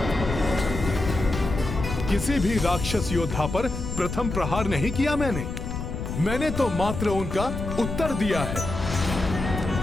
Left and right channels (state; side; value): noise; left; rumble, 6 dB below the sound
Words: किसी भी राक्षस योद्धा पर प्रथम प्रहार नहीं किया मैंने तो मात्र उनका उत्तर दिया है।